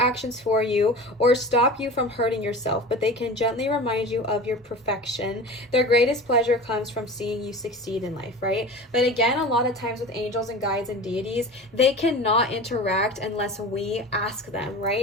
for you or stop you from hurting yourself, but they can gently remind you of your perfection. Their greatest pleasure comes from seeing you succeed in life, right? But again, a lot of times with angels and guides and deities, they cannot interact unless we ask them,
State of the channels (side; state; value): both; normal; correlation 0.35